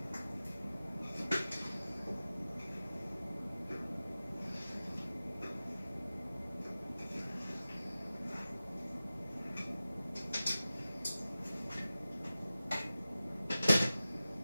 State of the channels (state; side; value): inverted; both; correlation -0.96